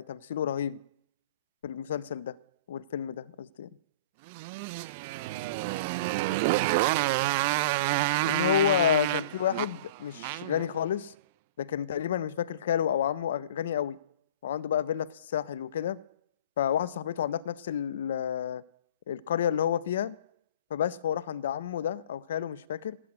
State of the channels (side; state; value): both; inverted; correlation -0.39